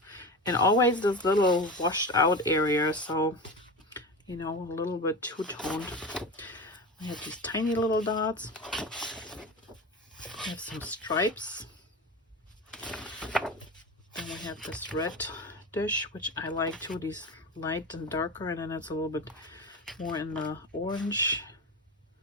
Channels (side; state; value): both; normal; correlation 0.26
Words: and always this little washed out area, so you know, a little bit two-toned. We have these tiny little dots. We have some stripes. we have this red dish, which I like too, these light and darker, and then it's a little bit more in the orange.